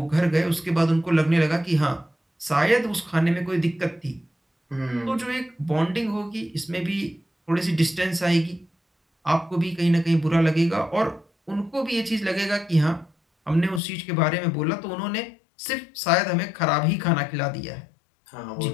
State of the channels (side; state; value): right; drops out; at 13.8 s